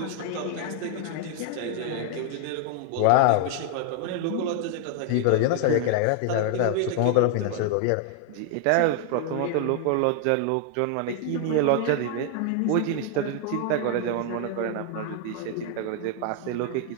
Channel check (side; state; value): both; different; correlation 0.00